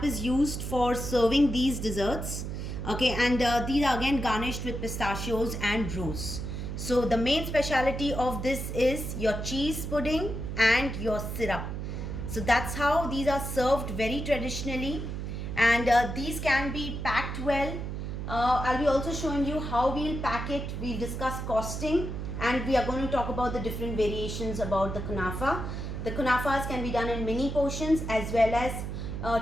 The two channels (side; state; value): right; noise; hum, 5 dB below the sound